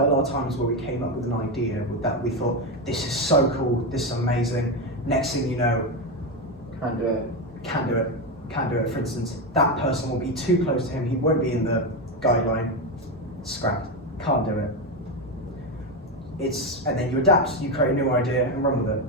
a lot of times where we came up with an idea with that we thought, this is so cool, this is amazing. Next thing you know, Can't do it. For instance, that person will be too close to him, he won't be in the guideline, scrapped, can't do it. And then you adapt, you create a new idea and run with it.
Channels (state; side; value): normal; both; correlation 0.11